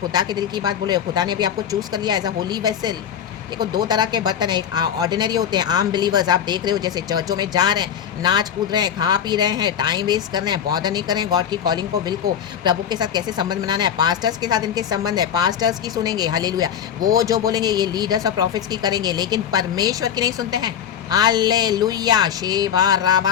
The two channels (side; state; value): right; quieter; 8.8 dB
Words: के दिल की बात बोले हो। खुदा ने भी आपको चूज कर लिया एज अ होली वेसल। देखो, 2 तरह के बर्तन है, एक ऑर्डिनरी होते हैं, आम बिलीवर्स। आप देख रहे हो जैसे चर्चों में जा रहे हैं, नाच कूद रहे हैं, खा पी रहे हैं, टाइम वेस्ट कर रहे हैं, बॉदर नहीं कर रहे हैं गॉड की कॉलिंग को, विल को, प्रभु के साथ कैसे संबंध बनाना है। पास्टर्स के साथ इनके संबंध है, पास्टर्स की सुनेंगे, हालेलुया। वो जो बोलेंगे ये लीडर्स और प्रॉफिट्स की करेंगे, लेकिन परमेश्वर की नहीं सुनते हैं। हालेलुया, शेबा